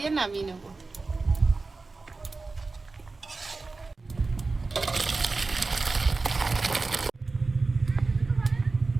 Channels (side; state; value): left; quieter; 3.8 dB